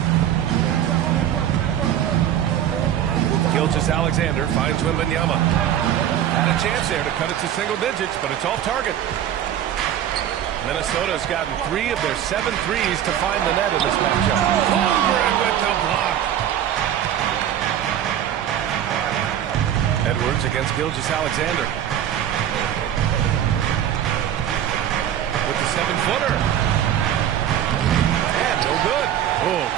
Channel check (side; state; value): left; quieter; 10.5 dB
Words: Gilgeous-Alexander finds Wembanyama. Had a chance there to cut it to single digits, but it's off target. Minnesota's gotten 3 of their 7 threes to find the net in this matchup. Holmgren with the block. Edwards against Gilgeous-Alexander. With the 7-footer. And no good. Oh,